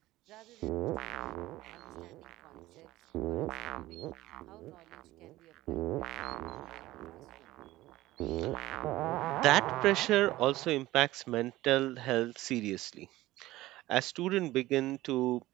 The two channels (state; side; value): quieter; left; 17.2 dB